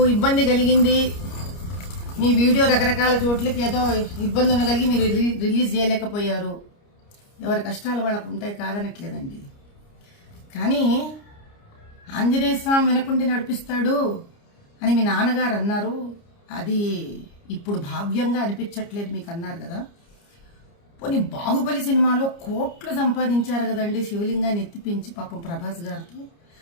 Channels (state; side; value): late; right; 29 ms